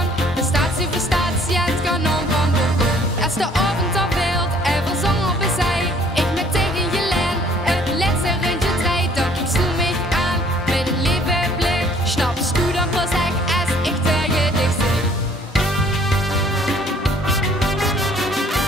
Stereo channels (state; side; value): normal; both; correlation 0.58